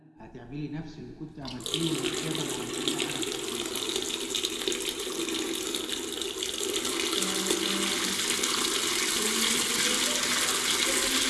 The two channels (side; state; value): both; identical; correlation 1.00